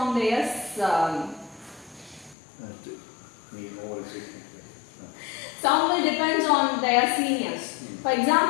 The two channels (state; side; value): drops out; right; at 2.4 s